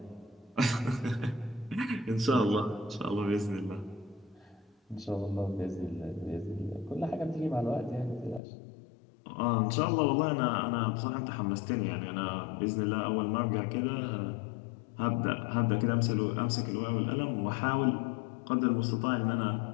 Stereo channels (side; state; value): right; drops out; at 8.4 s